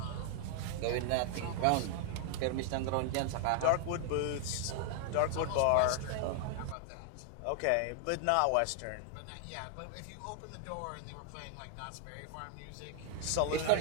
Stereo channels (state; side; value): different; both; correlation 0.00